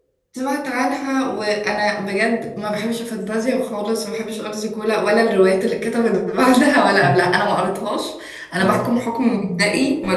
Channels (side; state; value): both; identical; correlation 1.00